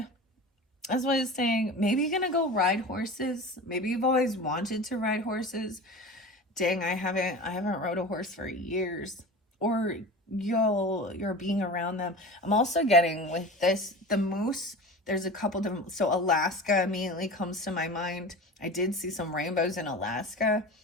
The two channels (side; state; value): both; normal; correlation 0.33